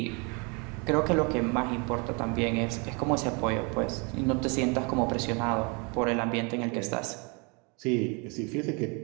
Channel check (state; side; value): quieter; left; 32.1 dB